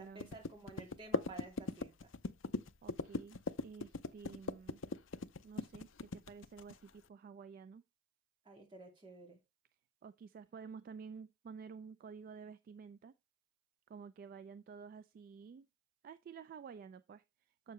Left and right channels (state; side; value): normal; both; correlation 0.11